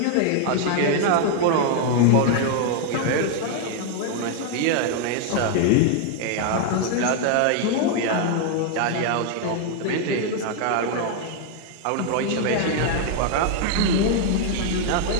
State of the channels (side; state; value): both; different; correlation 0.00